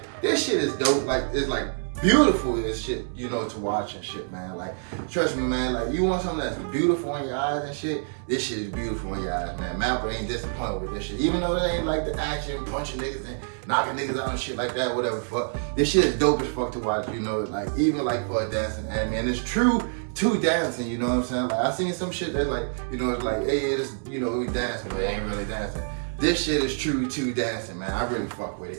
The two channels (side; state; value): left; silent; 61 dB below the other